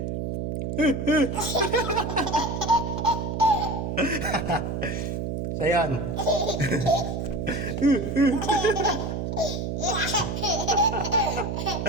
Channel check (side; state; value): right; noise; hum, 3 dB below the sound